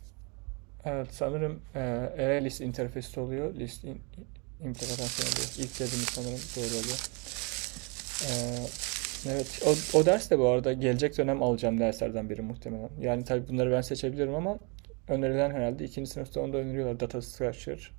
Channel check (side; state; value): left; quieter; 32.0 dB